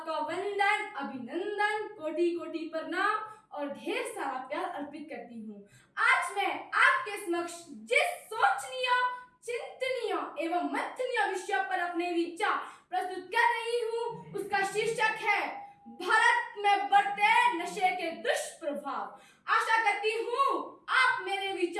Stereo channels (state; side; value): identical; both; correlation 1.00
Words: वंदन, अभिनंदन, कोटि कोटि प्रणाम और ढेर सारा प्यार अर्पित करती हूँ। आज मैं आपके समक्ष जिस सोचनीय, चिंतनीय एवं मंथनीय विषय पर अपने विचार प्रस्तुत कर रही हूँ, उसका शीर्षक है भारत में बढ़ते नशे के दुष्प्रभाव। आशा करती हूँ आप मेरे